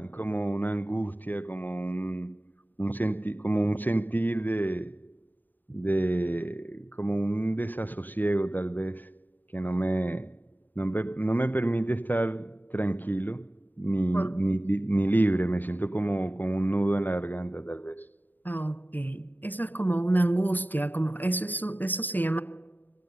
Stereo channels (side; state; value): right; late; 0.088 ms